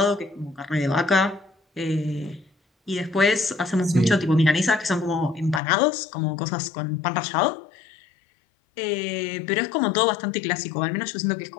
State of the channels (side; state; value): right; drops out; at 5.6 s